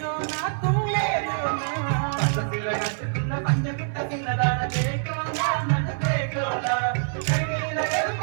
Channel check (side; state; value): left; silent; 57 dB below the other